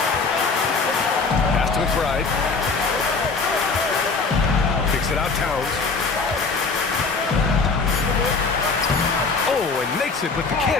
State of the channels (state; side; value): quieter; right; 4.4 dB